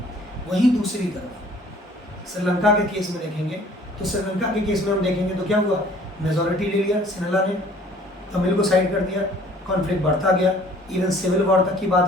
वहीं दूसरी तरफ श्रीलंका के केस में देखेंगे तो श्रीलंका के केस में हम देखेंगे तो क्या हुआ, मेजॉरिटी ले लिया सिनेला ने, तमिल को साइड कर दिया, कॉन्फ्लिक्ट बढ़ता गया, इवन सिविल वॉर तक की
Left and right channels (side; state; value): both; normal; correlation 0.54